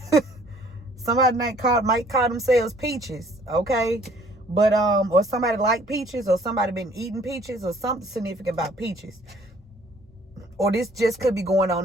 Somebody might call themselves Peaches. Okay. But or somebody like peaches, or somebody been eating peaches, or something significant about peaches. Or this just could be going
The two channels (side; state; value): both; normal; correlation 0.58